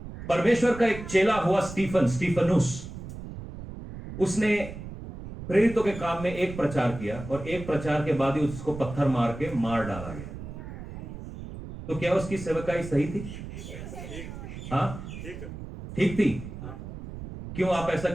परमेश्वर का एक चेला हुआ स्टीफनुस, उसने प्रेरितों के काम में एक प्रचार किया और एक प्रचार के बाद ही उसको पत्थर मार के मार डाला गया। तो क्या उसकी सेवकाई सही थी? हाँ, ठीक थी। क्यों आप ऐसा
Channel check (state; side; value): noise; right; rumble, 11 dB below the sound